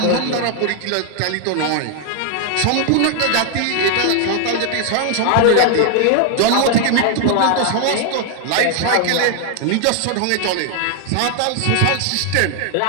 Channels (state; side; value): different; both; correlation 0.00